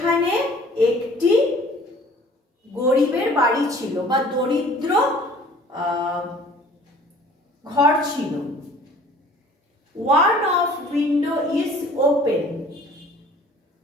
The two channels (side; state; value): both; normal; correlation 0.51